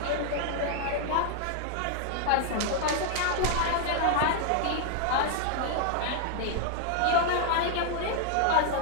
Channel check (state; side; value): different; both; correlation 0.00